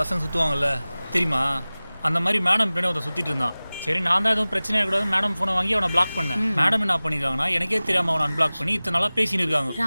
சுற்றுவாங்கல்ல தெரியுமா? அந்த மாதிரி மேடம் பின்னாடி ஒருத்தன் சுற்றிட்டு இருந்தான். சரி, நான் தான் எதுவும் பிரச்சனை இருக்கக்கூடாது மேடம் ஃபோனை வாங்கி அவனை பிளாக் பண்ணேன். மேடம் என்ன பண்ணியிருக்காங்கன்னா எனக்கே தெரியாமல் அவனை அன்பிளாக் பண்ணி இத்தனை நாளாக பேசின்னு இருக்காங்க.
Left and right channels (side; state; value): both; inverted; correlation -0.99